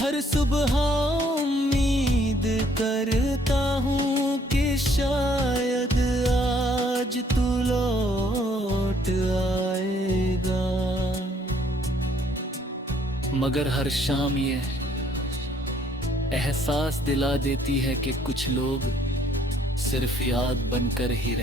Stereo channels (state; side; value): normal; both; correlation 0.64